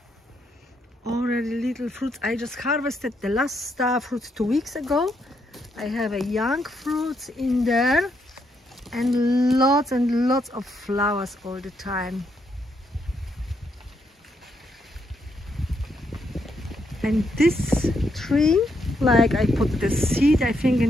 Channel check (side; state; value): both; normal; correlation 0.77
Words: Already little fruits. I just harvested the last star fruits 2 weeks ago. I have a young fruits in there and lots of flowers all the time. And this tree, like I put the seed, I think